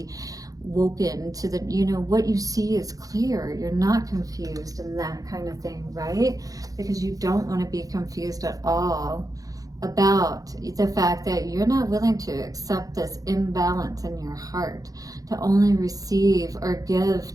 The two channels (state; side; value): late; left; 0.17 ms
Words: woken to the, you know, what you see is clear. You're not confused and that kind of thing, right? Because you don't want to be confused at all about the fact that you're not willing to accept this imbalance in your heart, to only receive or give